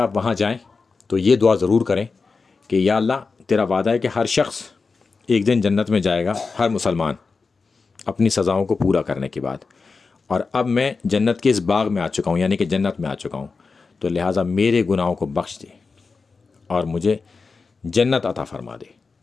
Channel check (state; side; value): quieter; right; 4.5 dB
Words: وہاں جائیں تو یہ دعا ضرور کریں کہ یا اللہ، تیرا وعدہ ہے کہ ہر شخص ایک دن جنت میں جائے گا، ہر مسلمان اپنی سزاؤں کو پورا کرنے کے بعد، اور اب میں جنت کے اس باغ میں آ چکا ہوں، یعنی کہ جنت میں آ چکا ہوں، تو لہٰذا میرے گناہوں کو بخش دے اور مجھے جنت عطا فرما دے۔